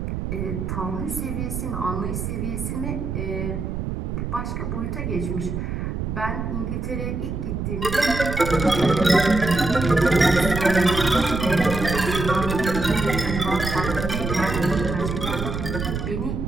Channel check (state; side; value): noise; right; rumble, 4 dB below the sound